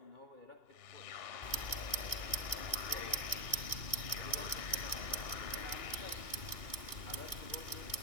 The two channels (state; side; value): late; right; 2.8 ms